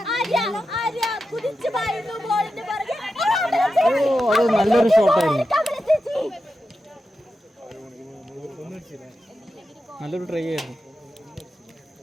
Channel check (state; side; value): normal; both; correlation 0.90